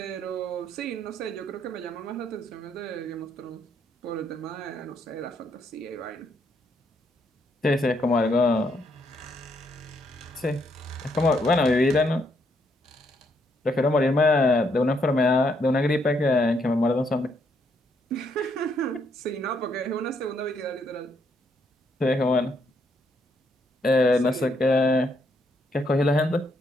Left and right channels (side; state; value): both; normal; correlation 0.74